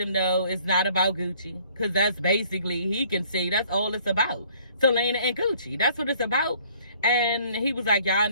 know it's not about Gucci, because that's basically, he can see, that's all it's about. Selena and Gucci, that's what it's about. And he was like, y'all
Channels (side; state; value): both; inverted; correlation -0.58